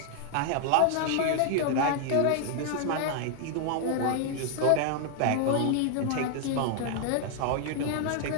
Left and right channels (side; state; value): both; different; correlation 0.00